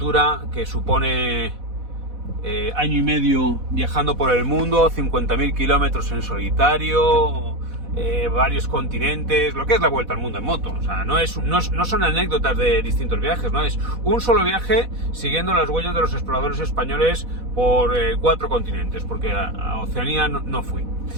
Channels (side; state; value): left; late; 4.1 ms